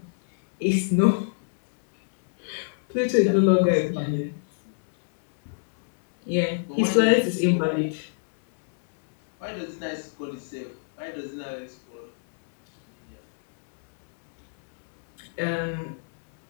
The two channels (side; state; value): right; silent; digital silence